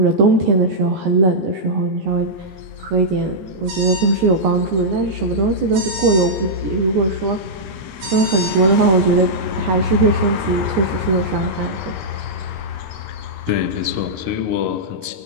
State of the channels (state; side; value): late; left; 15 ms